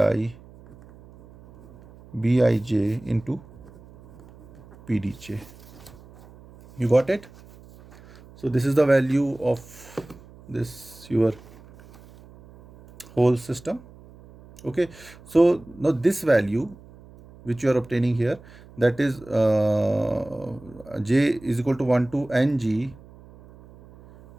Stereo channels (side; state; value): right; noise; hum, 22 dB below the sound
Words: BIJ into PDJ. You got it? So this is the value of this your whole system. Okay. So now this value which you are obtaining here, that is J is equal to 1 to NG.